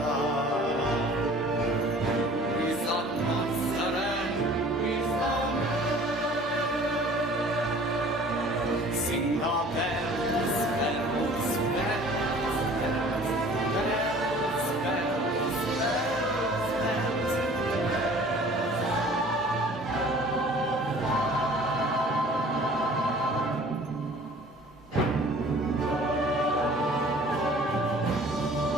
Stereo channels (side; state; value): both; normal; correlation 0.49